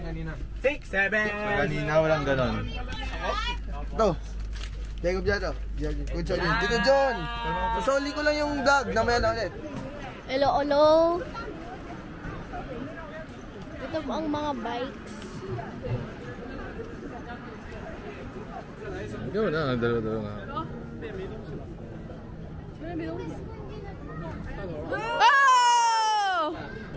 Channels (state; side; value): identical; both; correlation 1.00